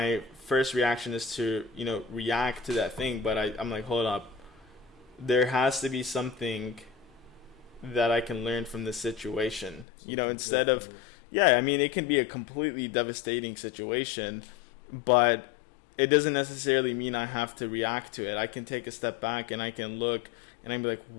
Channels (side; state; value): right; drops out; at 9.9 s